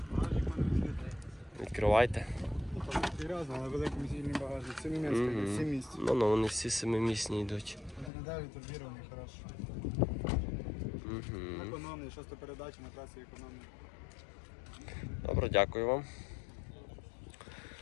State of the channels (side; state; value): right; drops out; at 8.1 s